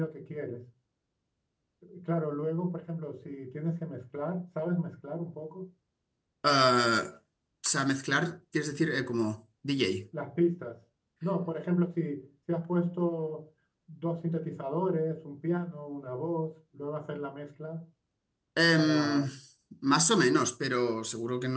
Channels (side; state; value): both; identical; correlation 1.00